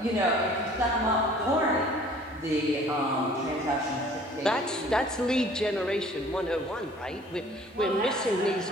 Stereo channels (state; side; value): normal; both; correlation 0.52